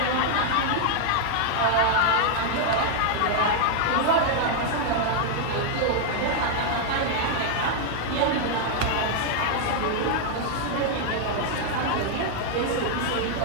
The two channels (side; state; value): both; different; correlation 0.00